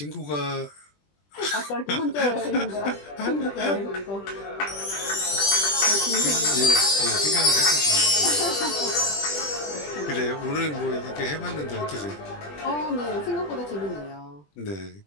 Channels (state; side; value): late; right; 20 ms